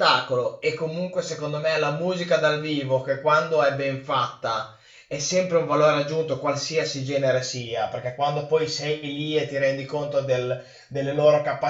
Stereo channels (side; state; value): both; identical; correlation 1.00